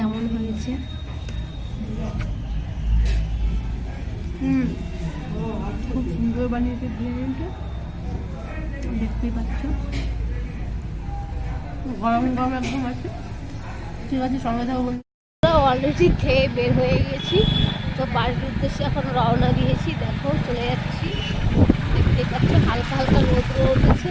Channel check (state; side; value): identical; both; correlation 1.00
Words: হয়েছে। খুব সুন্দর বানিয়েছে বিরিয়ানিটা, দেখতেই পাচ্ছ। গরম গরম একদম আছে। ঠিক আছে, সঙ্গে থাকো। অলরেডি খেয়ে বের হয়ে গেছি। তো বাড়ির উদ্দেশ্যে এখন রওনা দিয়েছি। দেখো চলে যাচ্ছি, দেখতেই পাচ্ছ। হালকা হালকা রোদ উঠেছে,